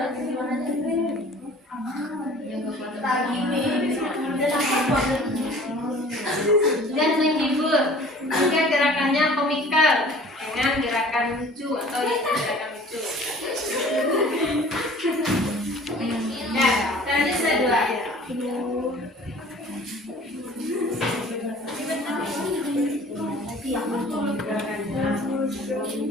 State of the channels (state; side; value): normal; both; correlation 0.48